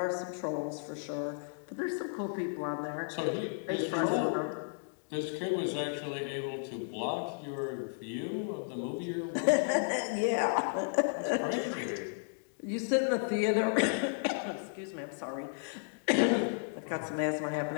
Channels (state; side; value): silent; right; digital silence